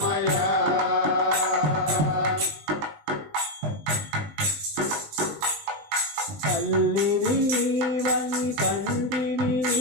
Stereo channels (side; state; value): left; late; 20 ms